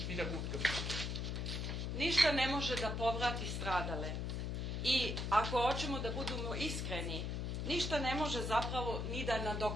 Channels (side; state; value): left; noise; hum, 2 dB below the sound